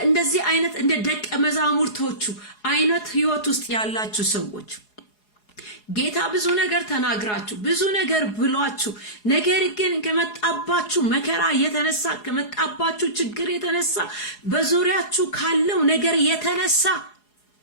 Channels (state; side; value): late; right; 4.8 ms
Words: እንደዚህ አይነት እንደ ደቀ መዛሙርቶቹ አይነት ህይወት ውስጥ ያላችሁ ሰዎች ጌታ ብዙ ነገር ተናግራችሁ ብዙ ነገር ብሏችሁ ነገር ግን ከመጣባችሁ መከራ የተነሳ ከመጣባችሁ ችግር የተነሳ በዙሪያችሁ ካለው ነገር የተነሳ